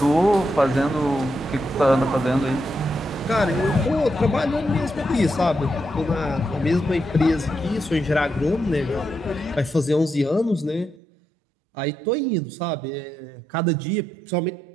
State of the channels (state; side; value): drops out; left; at 11.0 s